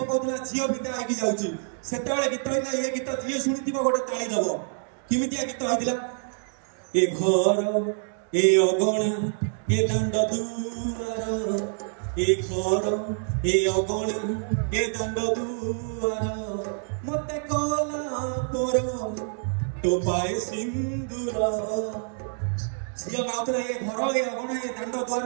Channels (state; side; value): silent; left; 60 dB below the other